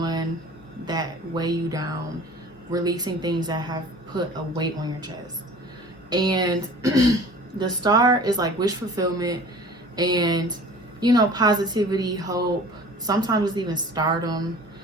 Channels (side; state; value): both; normal; correlation 0.44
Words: that weigh you down, releasing things that have put a weight on your chest. And the Star is like wish fulfillment and, you know, positivity, hope. Sometimes it's even stardom,